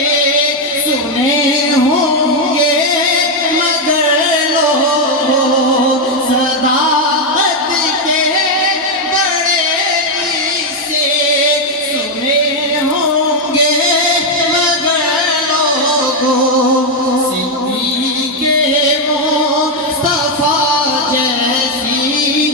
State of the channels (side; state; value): both; normal; correlation 0.03